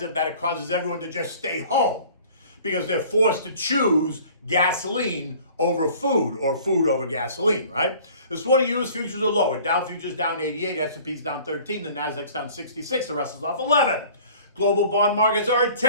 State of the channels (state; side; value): inverted; both; correlation -0.49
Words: that it causes everyone to just stay home because they're forced to choose gasoline over food or food over gasoline, right? This morning, U.S. futures are lower. Dow futures down 88, S&P's down 13, the Nasdaq's down 66, the Russell's off 11. Global bond markets are